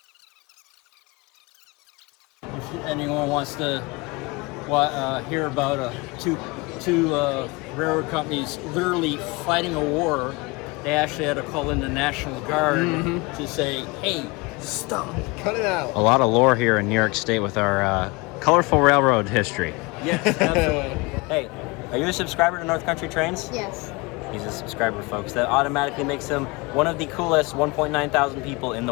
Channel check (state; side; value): quieter; right; 25.9 dB